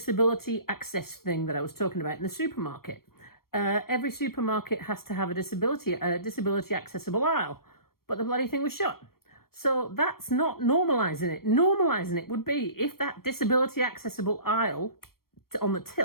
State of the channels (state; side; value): late; right; 0.93 ms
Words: access thing that I was talking about in the supermarket. Every supermarket has to have a disability accessible aisle, but the bloody thing was shut. So that's not normalising it. Normalising it would be if that disability accessible aisle on the